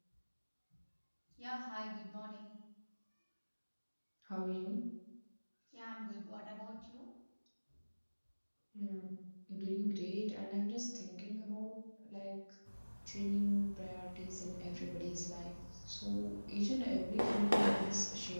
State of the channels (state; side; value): inverted; both; correlation -1.00